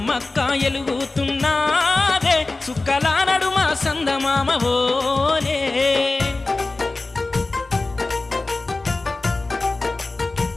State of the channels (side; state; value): right; quieter; 3.3 dB